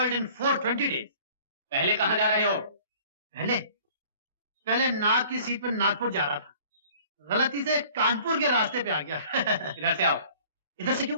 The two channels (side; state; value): both; inverted; correlation -0.51